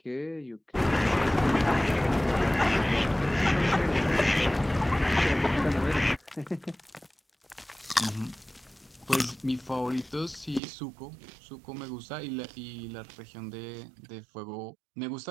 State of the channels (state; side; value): drops out; left; at 10.6 s